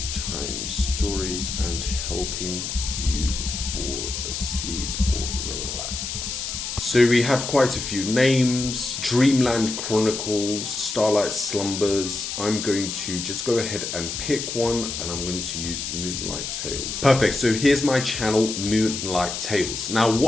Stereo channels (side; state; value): left; noise; hiss, 5 dB below the sound